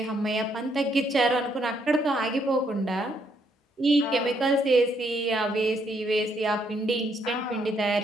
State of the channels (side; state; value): both; normal; correlation 0.72